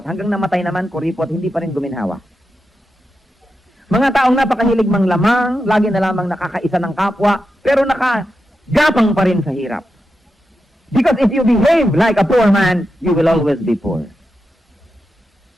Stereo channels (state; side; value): normal; both; correlation 0.88